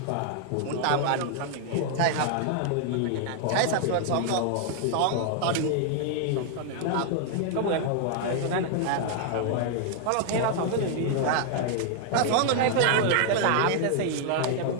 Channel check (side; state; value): both; different; correlation 0.00